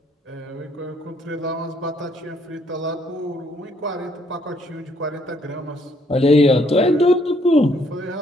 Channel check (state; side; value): normal; both; correlation 0.68